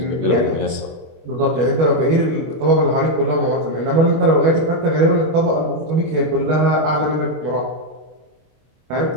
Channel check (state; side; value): late; left; 24 ms